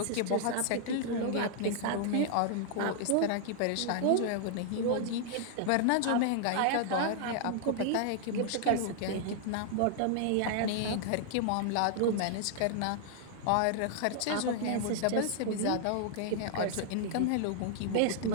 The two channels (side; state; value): both; different; correlation -0.01